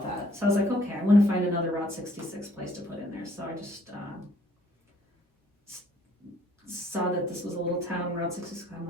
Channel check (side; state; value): both; normal; correlation 0.62